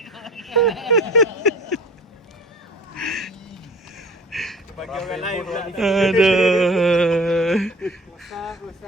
Bagi orang lain pula. Aduh.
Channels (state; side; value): normal; both; correlation 0.42